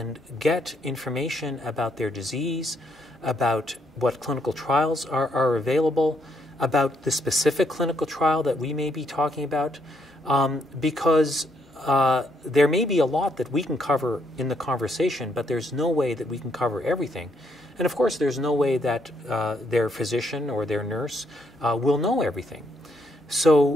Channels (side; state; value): both; normal; correlation 0.74